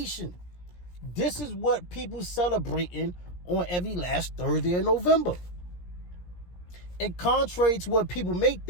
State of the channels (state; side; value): late; right; 17 ms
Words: This is what people celebrating on every last Thursday of November. And contrary to what people may